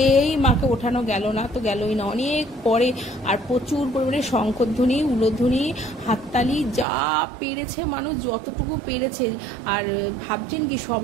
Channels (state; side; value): drops out; left; at 6.9 s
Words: মাকে ওঠানো গেল না, তো গেলই না। অনেক পরে আর প্রচুর পরিমাণে শঙ্খধ্বনি, উলধ্বনি, হাততালি, যা পেরেছে মানুষ যতটুকু পেরেছে। আর ভাবছেন কি